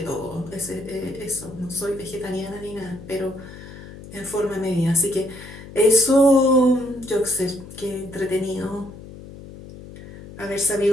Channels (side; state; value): left; noise; hum, 15 dB below the sound